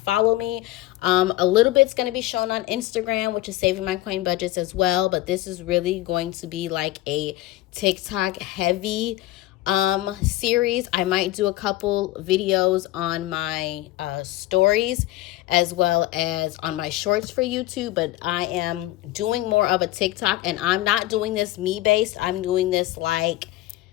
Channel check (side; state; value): right; quieter; 16.6 dB